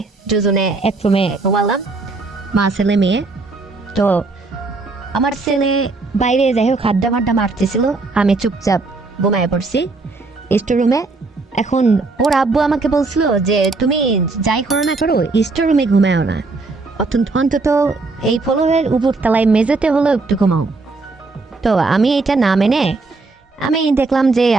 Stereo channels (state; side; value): quieter; left; 3.7 dB